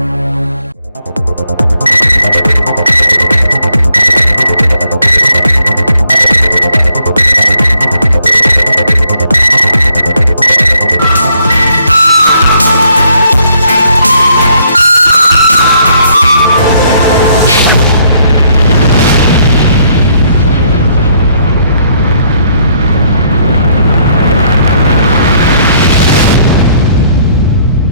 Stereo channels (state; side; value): inverted; both; correlation -0.69